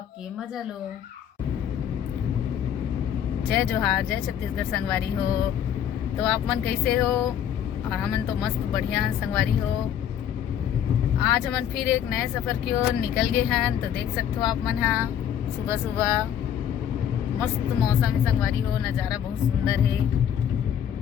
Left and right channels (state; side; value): quieter; right; 9.5 dB